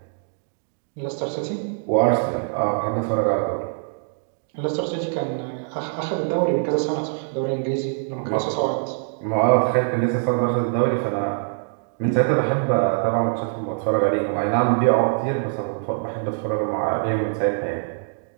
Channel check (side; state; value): left; silent; digital silence